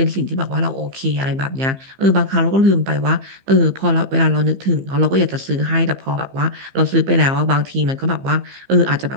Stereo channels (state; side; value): late; left; 15 ms